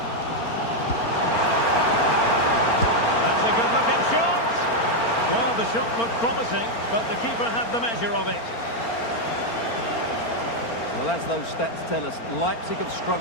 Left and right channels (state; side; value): late; right; 4.4 ms